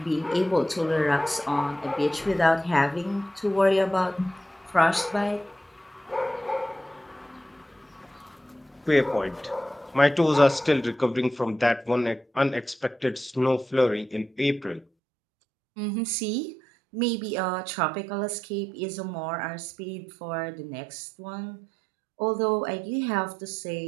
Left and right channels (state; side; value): drops out; left; at 14.9 s